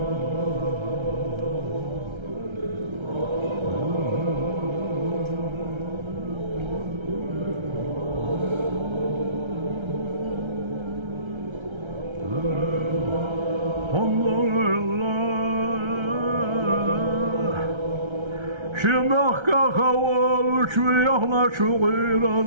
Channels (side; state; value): left; late; 1.3 ms